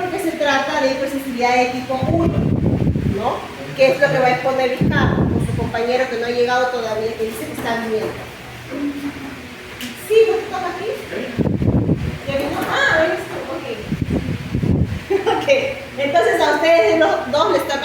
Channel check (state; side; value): identical; both; correlation 1.00